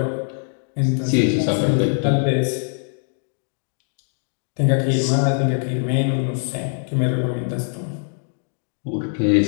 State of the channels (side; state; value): right; silent; 64 dB below the other